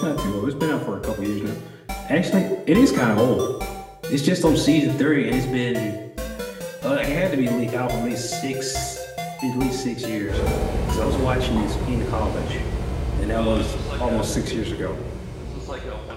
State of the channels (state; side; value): identical; both; correlation 1.00